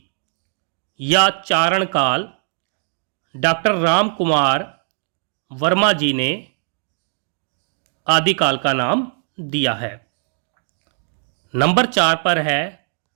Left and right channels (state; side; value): silent; left; 62 dB below the other